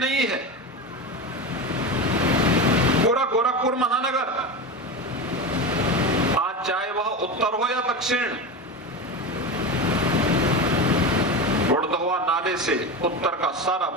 है, पूरा गोरखपुर महानगर, आज चाहे वह उत्तर हो या दक्षिण, बुढ़धवा नाले से उत्तर का सारा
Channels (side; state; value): both; normal; correlation 0.22